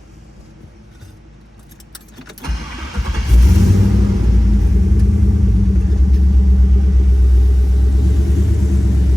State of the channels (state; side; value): normal; both; correlation 0.98